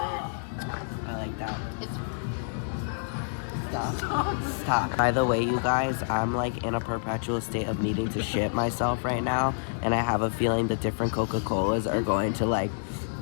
like that. It's Stop. By the way, you guys, I'm like in a perpetual state of needing to shit myself right now, and I have a feeling the different Coca-Colas are going to like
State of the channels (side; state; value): right; silent; digital silence